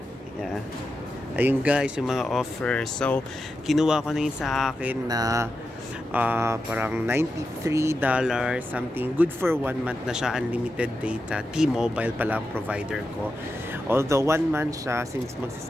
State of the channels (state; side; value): normal; both; correlation 0.89